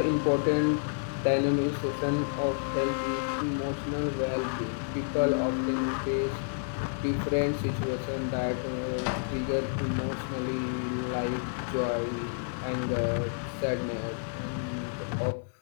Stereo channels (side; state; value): right; silent; 58 dB below the other